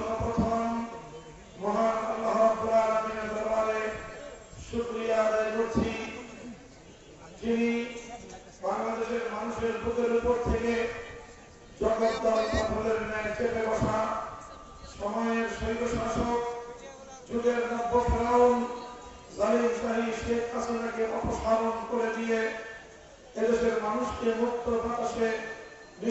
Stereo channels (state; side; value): identical; both; correlation 1.00